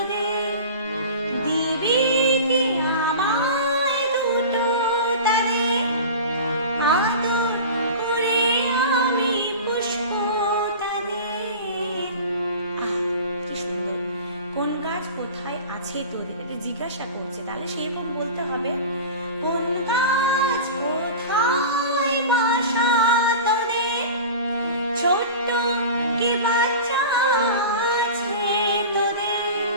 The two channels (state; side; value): inverted; both; correlation -0.34